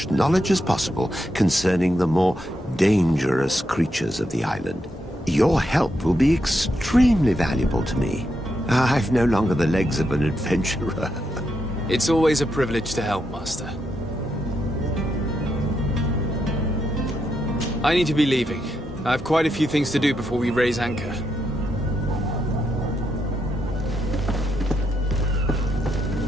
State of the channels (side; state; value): both; normal; correlation 0.81